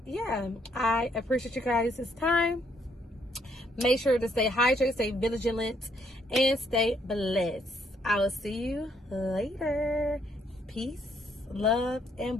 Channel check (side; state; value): both; normal; correlation 0.70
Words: yeah, I appreciate you guys' time. Make sure to stay hydrated, stay vigilant, and stay blessed. I will see you later. Peace, love, and